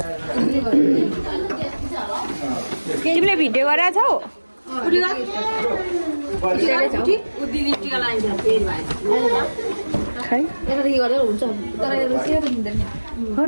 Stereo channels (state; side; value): inverted; both; correlation -1.00